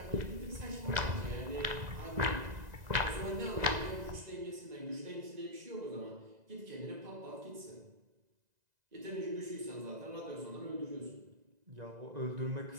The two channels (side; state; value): left; late; 2.0 ms